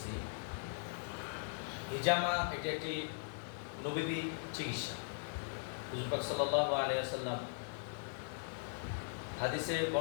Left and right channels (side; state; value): right; silent; digital silence